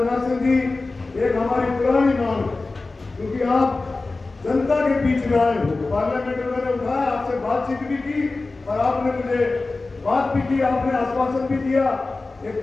सिंह जी, एक हमारी पुरानी मांग, क्योंकि आप जनता के बीच में आए हो, पार्लियामेंट में मैंने उठाया, आपसे बातचीत भी की और आपने मुझे बात भी की, आपने आश्वासन भी दिया। एक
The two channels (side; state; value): right; quieter; 3.5 dB